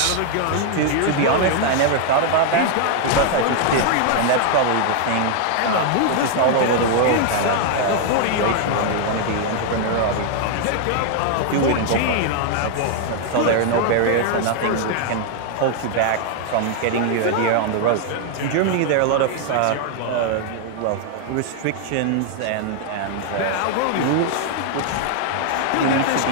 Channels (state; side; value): different; both; correlation 0.00